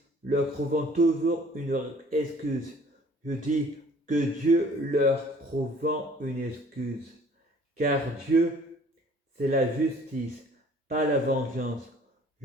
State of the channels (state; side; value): normal; both; correlation 0.54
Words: leur trouvant toujours une excuse. Je dis que Dieu leur trouvant une excuse. Car Dieu, c'est la justice, pas la vengeance.